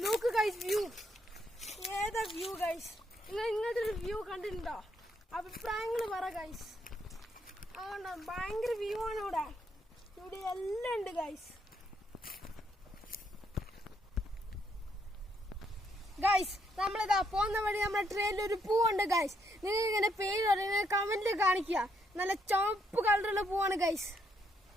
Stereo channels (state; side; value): normal; both; correlation 0.74